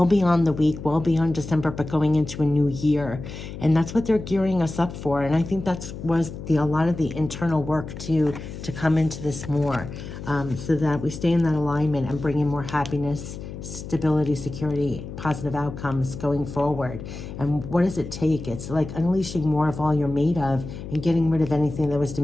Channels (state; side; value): noise; left; hum, 10 dB below the sound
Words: beyond the week, well beyond December, but going into a new year. And that's what they're gearing us up for. And I think was a lot of the internal work to come into this more, so that we stay in that alignment and bring in more happiness, stability, security, positive outcomes going forward. And what does it take? It's like unleashing more of all you're made of and getting rid of anything that was